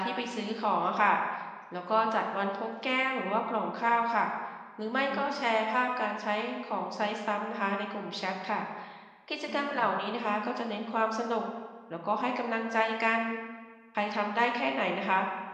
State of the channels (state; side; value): identical; both; correlation 1.00